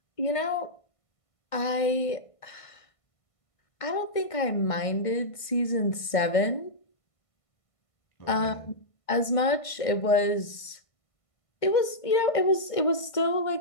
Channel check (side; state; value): right; late; 1.5 ms